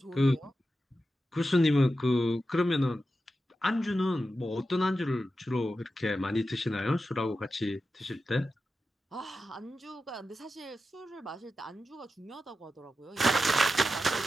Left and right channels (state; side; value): normal; both; correlation 0.91